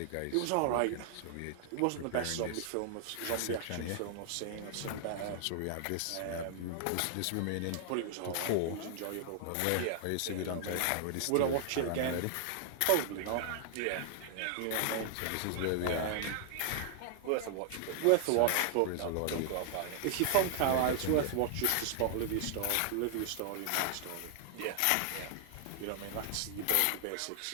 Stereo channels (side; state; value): both; different; correlation 0.00